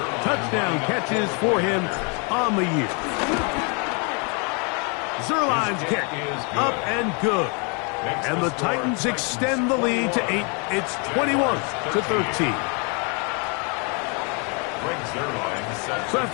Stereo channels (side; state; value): right; quieter; 34.9 dB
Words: touchdown catches for him on the year. Zerline's kick up and good. And the Titans extend the lead to 8. It's 21-13. So